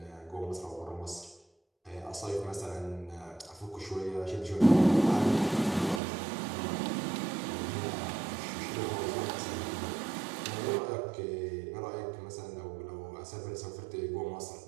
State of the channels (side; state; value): left; drops out; at 6.0 s